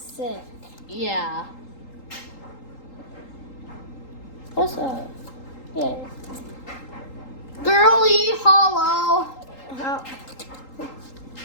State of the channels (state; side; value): late; right; 3.8 ms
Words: Yeah. What's up? Yeah. Girly hollow. How?